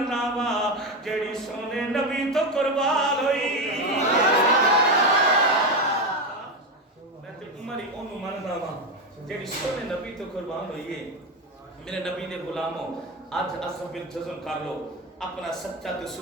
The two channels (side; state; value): both; normal; correlation 0.14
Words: وا جیڑی سونے نبی تو قربان ہوئی، میں تے عمر ہی انہوں مننا وا جیڑی سونے نبی تو قربان ہوئی ہے۔ میرے نبی نے غلاموں آج عصب بالجزم کر لو، اپنا سچا تے